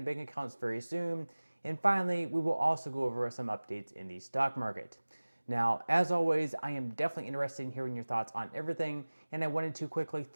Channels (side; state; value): both; inverted; correlation -1.00